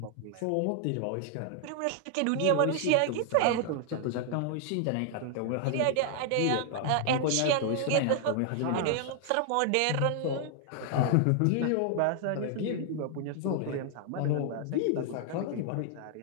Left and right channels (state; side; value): different; both; correlation 0.00